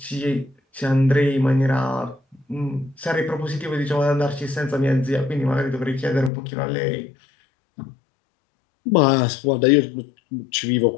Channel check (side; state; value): right; drops out; at 6.3 s